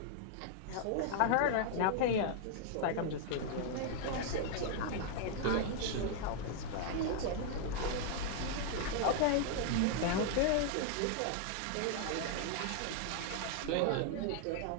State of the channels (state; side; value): different; both; correlation 0.00